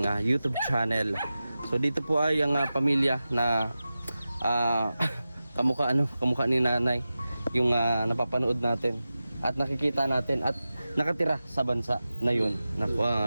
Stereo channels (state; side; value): inverted; both; correlation -0.94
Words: YouTube channel. So dito po ay ang pamilya na kamukha ni nanay yung napapanood natin at nakikita natin at nakatira sa bansa na yun